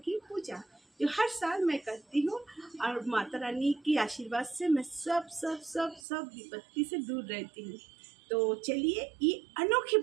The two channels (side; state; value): left; drops out; at 6.0 s